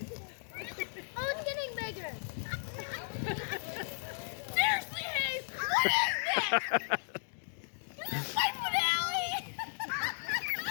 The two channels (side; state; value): right; silent; digital silence